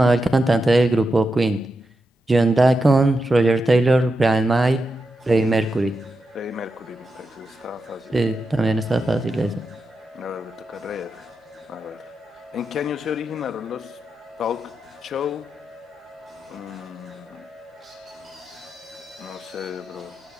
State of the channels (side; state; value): both; normal; correlation 0.87